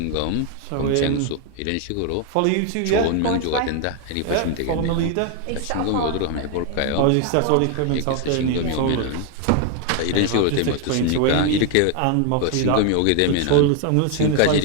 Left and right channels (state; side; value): different; both; correlation 0.01